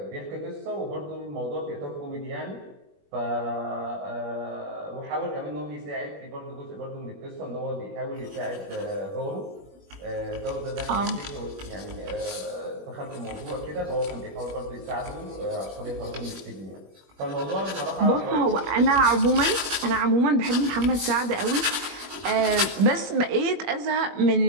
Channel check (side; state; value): left; late; 21 ms